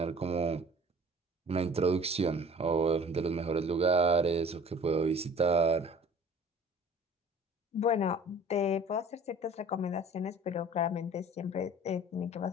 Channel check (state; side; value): normal; both; correlation 0.47